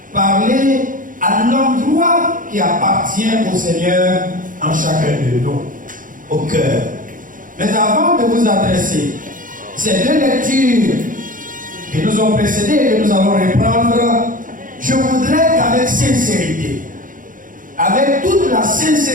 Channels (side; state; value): left; late; 0.39 ms